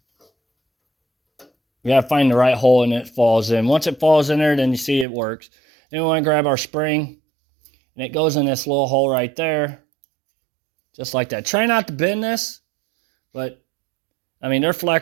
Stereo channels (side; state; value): left; drops out; at 5.1 s